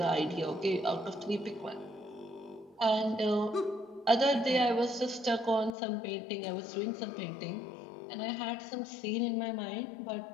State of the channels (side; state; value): right; drops out; at 5.8 s